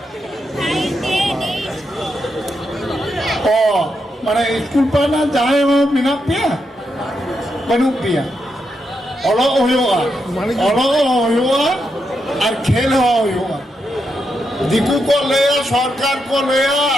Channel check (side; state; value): both; normal; correlation 0.83